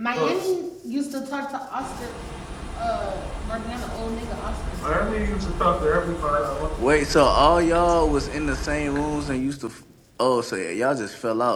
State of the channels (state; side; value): identical; both; correlation 1.00